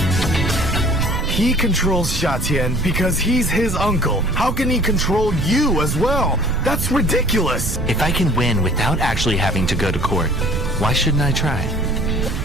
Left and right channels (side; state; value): right; noise; rumble, 4 dB below the sound